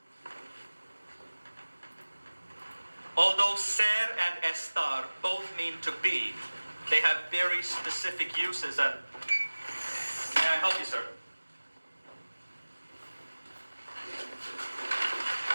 Although ser and estar both mean to be, they have very specific uses and... May I help you, sir?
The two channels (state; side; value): inverted; both; correlation -1.00